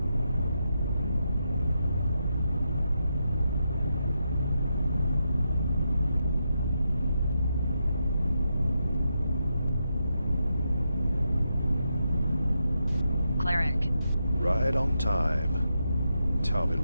Cleric. Right on time. Tell me,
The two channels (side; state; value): both; inverted; correlation -0.84